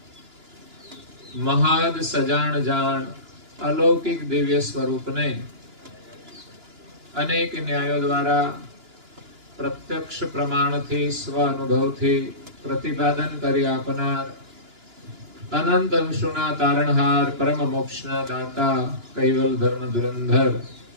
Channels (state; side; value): late; left; 2.9 ms